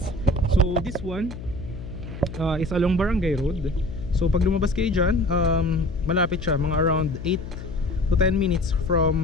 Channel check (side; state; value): left; noise; hum, 11 dB below the sound